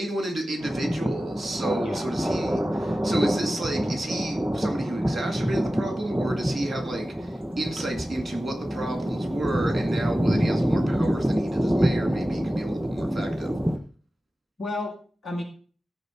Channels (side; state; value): both; normal; correlation 0.95